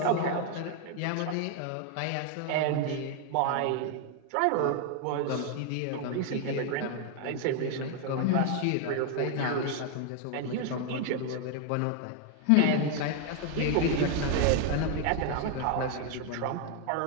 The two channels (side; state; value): both; different; correlation 0.00